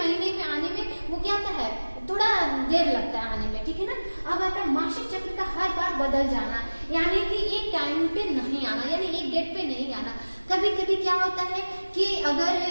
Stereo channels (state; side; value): inverted; both; correlation -1.00